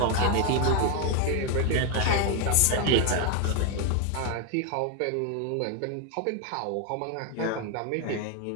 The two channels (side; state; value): both; different; correlation 0.01